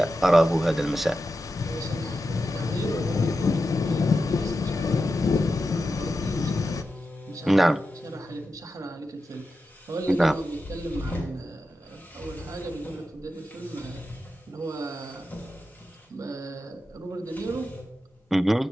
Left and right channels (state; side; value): normal; both; correlation 0.90